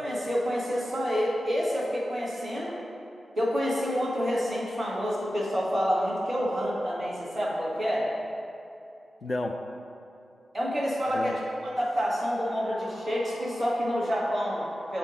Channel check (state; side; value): normal; both; correlation 0.93